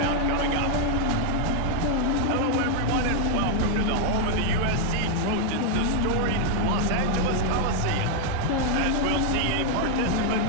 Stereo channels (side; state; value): both; different; correlation 0.00